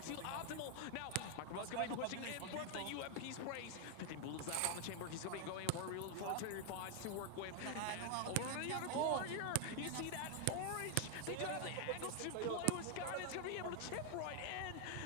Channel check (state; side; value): different; both; correlation 0.00